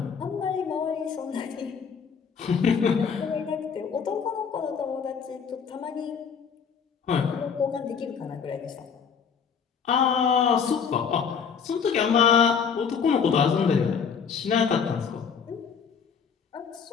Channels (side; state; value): right; quieter; 6.5 dB